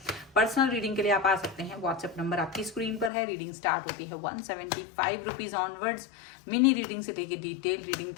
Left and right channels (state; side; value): drops out; right; at 3.1 s